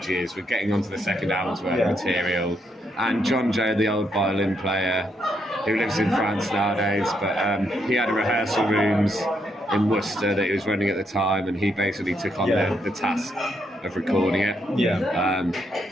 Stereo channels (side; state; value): both; normal; correlation 0.77